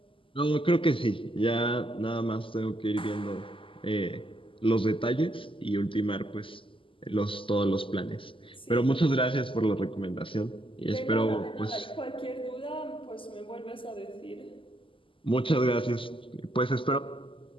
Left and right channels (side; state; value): right; late; 0.25 ms